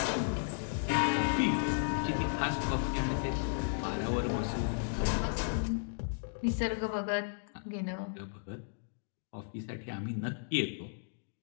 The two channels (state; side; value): silent; right; digital silence